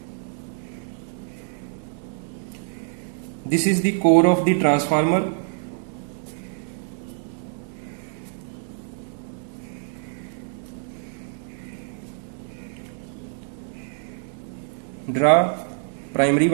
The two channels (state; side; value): silent; left; digital silence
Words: This is the core of the transformer. Draw primary